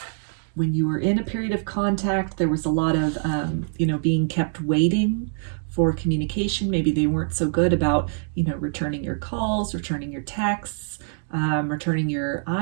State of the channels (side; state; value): left; silent; digital silence